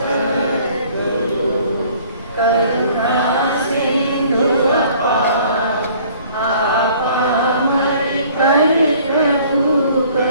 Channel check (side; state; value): both; inverted; correlation -0.55